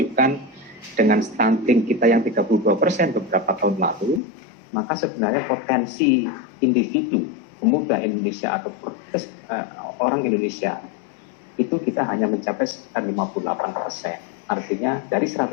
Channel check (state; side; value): drops out; right; at 4.2 s